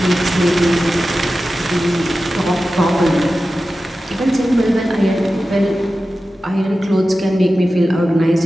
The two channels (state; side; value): normal; both; correlation 0.94